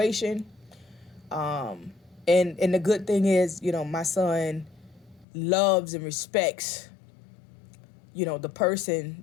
And the good thing is, you know, my son loves and respects, you know, the person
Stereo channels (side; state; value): right; drops out; at 5.2 s